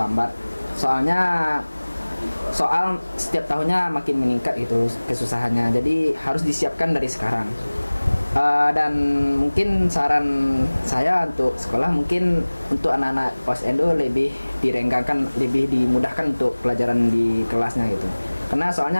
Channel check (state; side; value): inverted; both; correlation -1.00